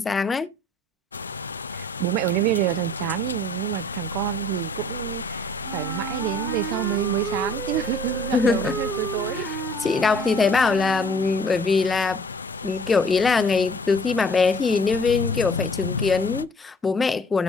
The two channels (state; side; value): normal; both; correlation 0.54